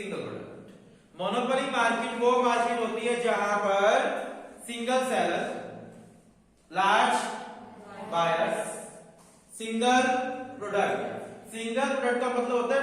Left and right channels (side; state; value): both; identical; correlation 1.00